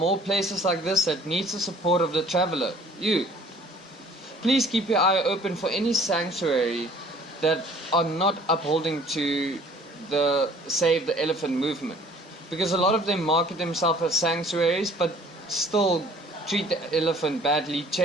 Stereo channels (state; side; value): normal; both; correlation 0.53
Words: places like this that needs the support of the traveler, you. Please keep your eye open for any sanctuary that are not upholding to the Save the Elephant movement, because a lot of them market themselves as sanctuaries but still treat the elephant badly,